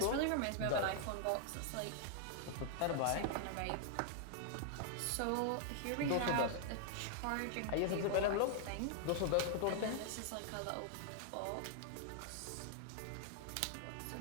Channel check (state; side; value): different; both; correlation 0.00